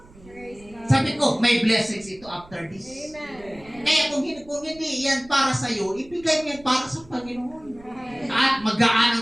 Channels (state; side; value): noise; right; rumble, 23 dB below the sound